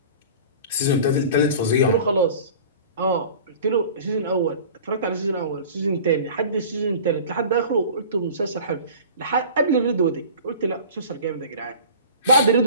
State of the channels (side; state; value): both; inverted; correlation -0.41